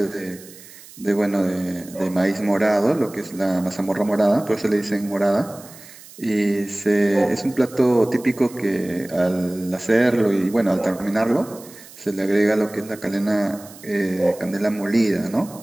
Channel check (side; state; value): right; noise; hiss, 20 dB below the sound